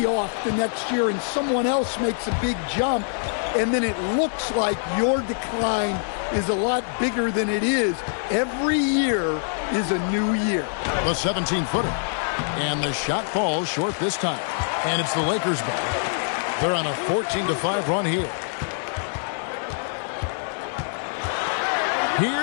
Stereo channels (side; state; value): right; silent; 61 dB below the other